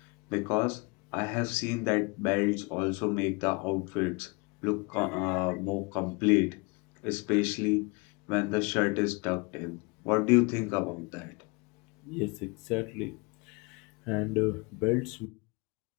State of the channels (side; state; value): right; quieter; 28.9 dB